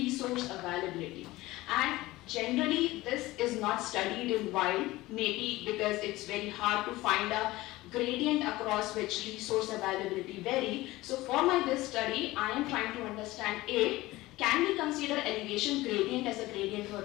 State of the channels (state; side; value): quieter; right; 18.7 dB